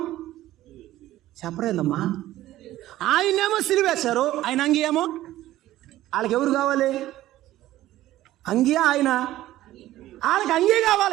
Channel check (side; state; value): left; quieter; 14.8 dB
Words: చెప్పరేందమ్మా, ఆయన్నేమో సిలివేశారు, ఆయన అంగీ ఏమో. వాళ్ళకి ఎవరు కావాలి? అంగీ ఆయన, వాళ్ళకి అంగీ